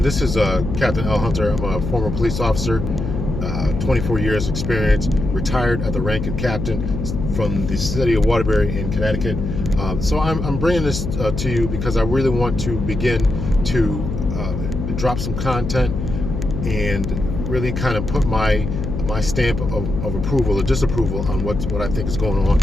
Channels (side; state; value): left; noise; hum, 4 dB below the sound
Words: this is Captain L. Hunter. I'm a former police officer, 24 years experience, retired at the rank of captain from the city of Waterbury in Connecticut. So I'm bringing this to you because I really want to begin to drop some content and really kind of put my stamp of approval or disapproval on what I think is going on